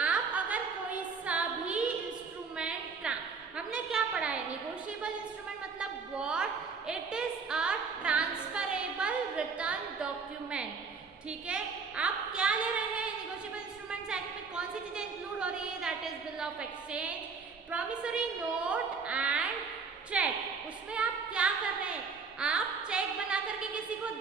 आप अगर कोई सा भी इंस्ट्रूमेंट, हमने क्या पढ़ा है? नेगोशिएबल इंस्ट्रूमेंट मतलब what? It is a transferable return document. ठीक है, आप क्या ले रहे हैं? नेगोशिएबल इंस्ट्रूमेंट्स एक्ट में कौन सी चीजें इंक्लूड हो रही है? That is bill of exchange, promissory note and cheque. उसमें आप क्या कर रहे हैं? आप चेक बना करके किसी को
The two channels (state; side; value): quieter; left; 5.0 dB